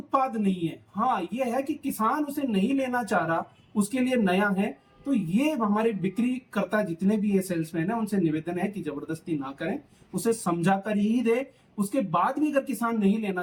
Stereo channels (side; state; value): both; identical; correlation 1.00